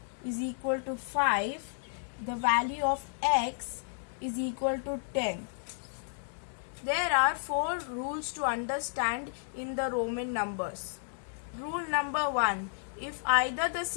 is equal to 5, the value of X is equal to 10. There are 4 rules to understand in the Roman numbers. Rule number 1. If either the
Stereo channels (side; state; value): right; silent; digital silence